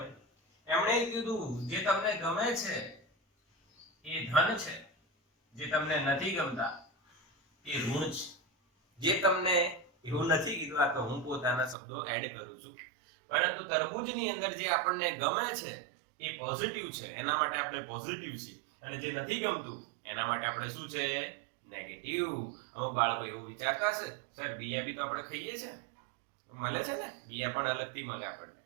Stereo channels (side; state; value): left; drops out; at 11.8 s